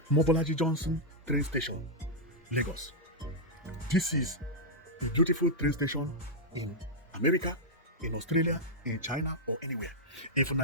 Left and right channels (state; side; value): normal; both; correlation -0.04